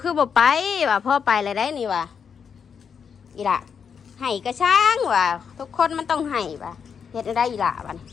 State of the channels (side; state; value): right; quieter; 6.8 dB